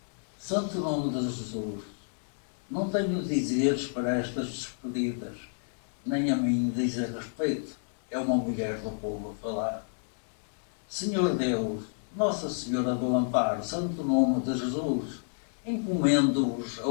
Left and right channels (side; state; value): right; silent; digital silence